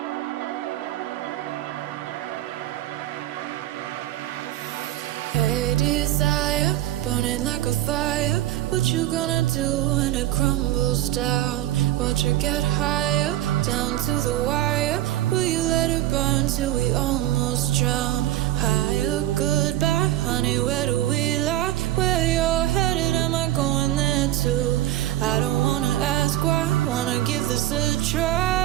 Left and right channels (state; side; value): quieter; left; 14.0 dB